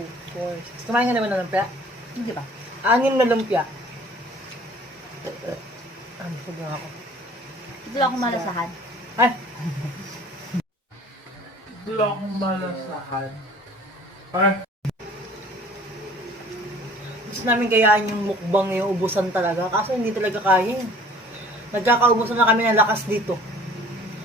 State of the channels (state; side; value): normal; both; correlation 0.50